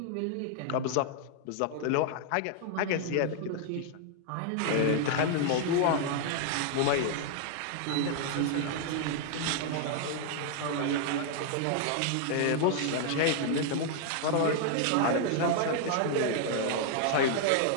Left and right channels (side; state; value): both; different; correlation 0.00